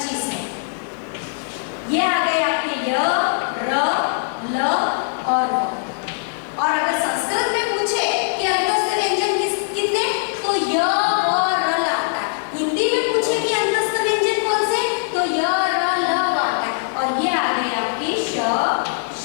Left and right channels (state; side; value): silent; right; digital silence